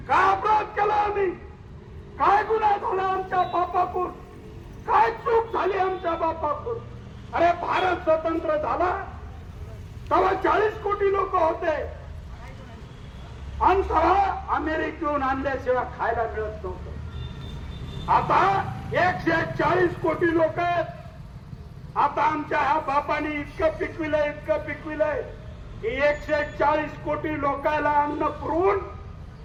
काय अपराध केला आम्ही, काय गुन्हा झाला आमच्या बापाकडून, काय चूक झाली आमच्या बापाकडून. अरे भारत स्वतंत्र झाला तेव्हा 40 कोटी लोक होते आणि तेव्हा अमेरिकेहून आणल्याशिवाय खायला मिळत नव्हतं. आता 140 कोटी लोक आहेत. आता आमच्या ह्या बापाने इतकं पिकविलंय की 140 कोटी लोकांना अन्न पुरवून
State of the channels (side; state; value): both; identical; correlation 1.00